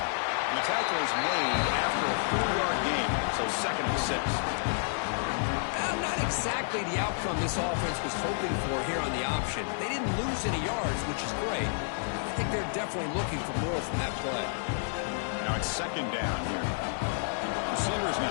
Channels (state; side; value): silent; right; digital silence